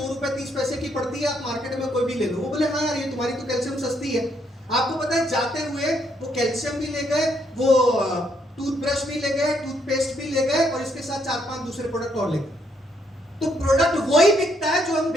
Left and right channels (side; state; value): both; normal; correlation 0.73